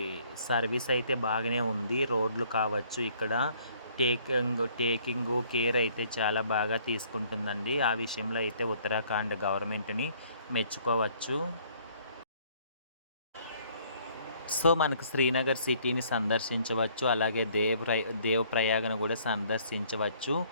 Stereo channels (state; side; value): inverted; both; correlation -0.60